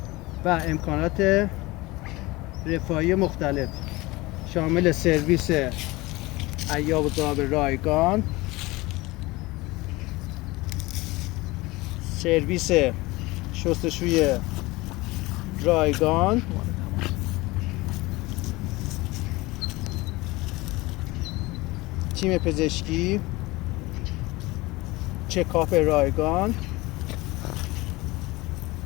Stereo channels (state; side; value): quieter; right; 21.4 dB